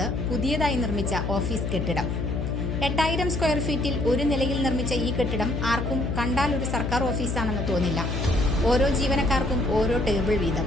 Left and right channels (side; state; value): left; noise; hum, 2 dB below the sound